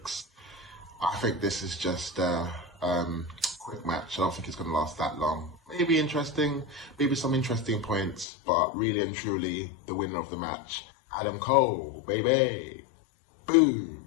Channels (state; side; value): drops out; right; at 8.2 s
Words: I think this is just a quick match. I don't think it's going to last that long. Maybe interesting, maybe some interesting points, but really and truly, the winner of the match, Adam Cole, baby.